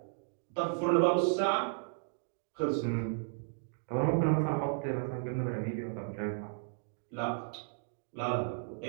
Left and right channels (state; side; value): silent; left; digital silence